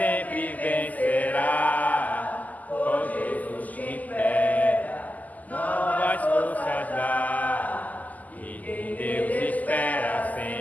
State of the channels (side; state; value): right; late; 0.079 ms